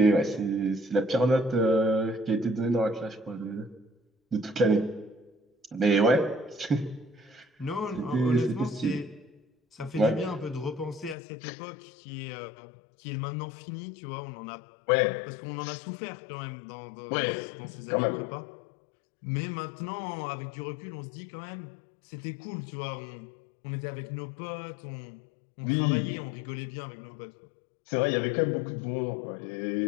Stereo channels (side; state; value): right; drops out; at 11.2 s